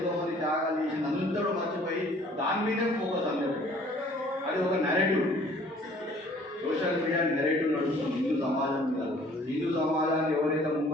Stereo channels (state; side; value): normal; both; correlation 0.55